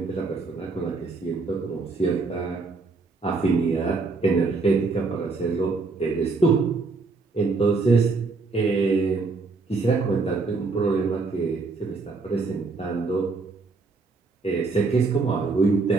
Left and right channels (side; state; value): left; quieter; 4.0 dB